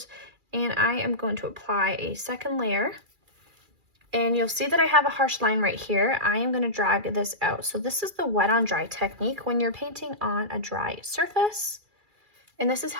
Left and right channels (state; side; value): late; left; 2.4 ms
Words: and I am going to apply a second layer. And you'll see that I have a harsh line right here. I am gonna drag this out. So this is the wet on dry technique when you're painting on a dry surface. And this is